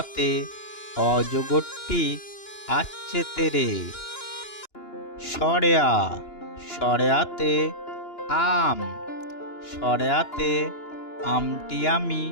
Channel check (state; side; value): late; right; 2.9 ms